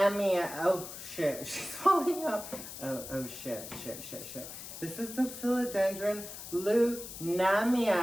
Oh shit, she's falling off. Oh shit. This is the Philodendron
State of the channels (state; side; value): noise; left; hiss, 11 dB below the sound